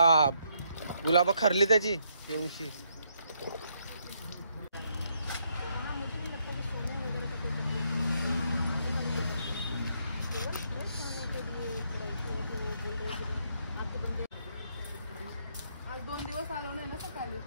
गुलाब खरली त्याची येऊनशी.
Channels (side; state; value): both; inverted; correlation -0.74